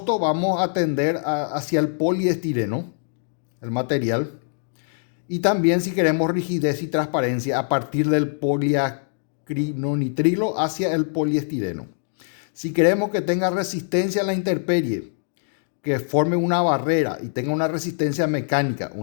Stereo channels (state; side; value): silent; right; digital silence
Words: vamos a tender hacia el poliestireno, el material. Y también si queremos rigidez y transparencia, a partir del poliacrinonitrilo hacia el poliestireno. Si queremos que tenga resistencia a la intemperie, que forme una barrera y tenga una resistencia mecánica,